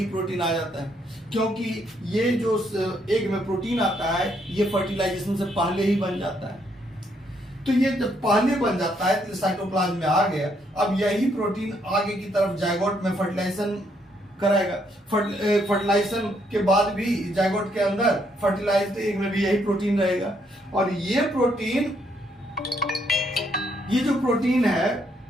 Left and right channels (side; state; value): both; normal; correlation 0.73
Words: क्योंकि ये जो एग में प्रोटीन आता है ये फर्टिलाइजेशन से पहले ही बन जाता है। तो ये जब पहले बन जाता है तो साइटोप्लाज्म में आ गया। अब यही प्रोटीन आगे की तरफ जायगोट में फर्टिलाइजेशन कराएगा। फर्टिलाइजेशन के बाद भी जायगोट के अंदर फर्टिलाइज्ड एग में भी यही प्रोटीन रहेगा, और ये जो प्रोटीन है